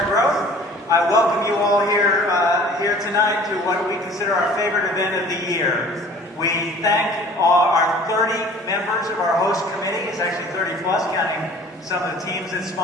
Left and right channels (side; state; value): both; normal; correlation 0.48